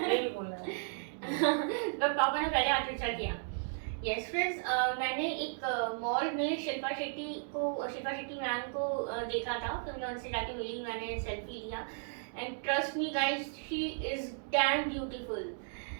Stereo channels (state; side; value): silent; left; digital silence